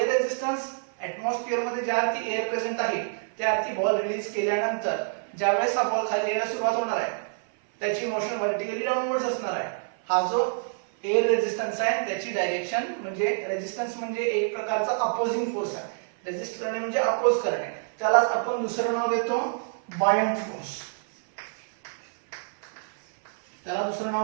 रेझिस्टन्स ऍटमॉस्फिअर मध्ये ज्या अर्थी एअर प्रेझेंट आहे त्या अर्थी बॉल रिलीज केल्यानंतर ज्यावेळेस हा बॉल खाली यायला सुरुवात होणार आहे, त्याची मोशन व्हर्टिकली डाऊनवर्ड्स असणार आहे. हा जो एअर रेझिस्टन्स आहे त्याची डायरेक्शन म्हणजे रेझिस्टन्स म्हणजे एक प्रकारचा अपोजिंग फोर्स आहे. रेझिस्ट करणे म्हणजे अपोज करणे, त्यालाच आपण दुसरं नाव देतो बायंट फोर्स. त्याला दुसरं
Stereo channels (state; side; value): silent; left; 59 dB below the other